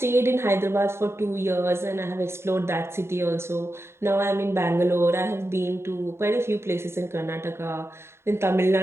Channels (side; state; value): left; late; 0.12 ms